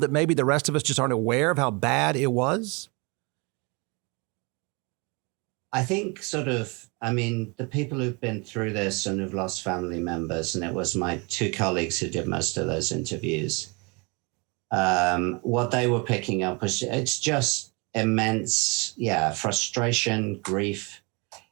maybe the rest of us just aren't aware of how bad it was? I think the people who've been through this and have lost family members, and it was my two colleagues who did most of those interviews, what they were picking up was it's just immense, frustration, grief.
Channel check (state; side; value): quieter; left; 29.9 dB